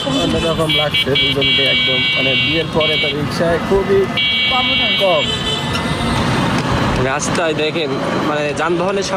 অন্যরকম লাগছে দুজনকে একদম। মানে বিয়ের পরে তো রিক্সায় খুবই কম, রাস্তায় দেখেন মানে যানবাহনের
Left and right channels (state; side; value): identical; both; correlation 1.00